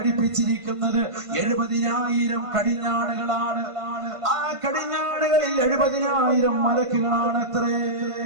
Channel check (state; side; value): late; left; 1.5 ms